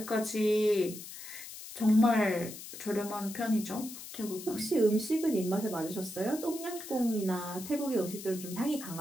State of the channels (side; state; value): left; noise; hiss, 12 dB below the sound